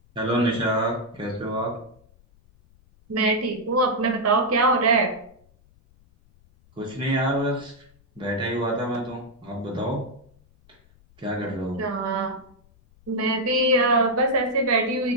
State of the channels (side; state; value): left; noise; rumble, 30 dB below the sound